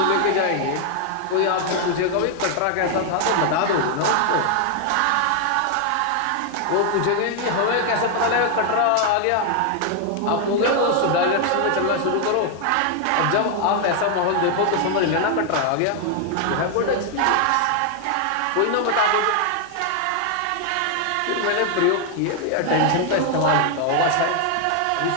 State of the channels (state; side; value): different; both; correlation 0.00